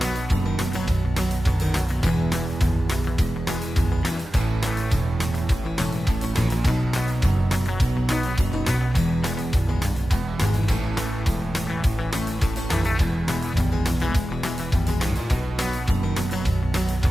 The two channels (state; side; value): normal; both; correlation 0.94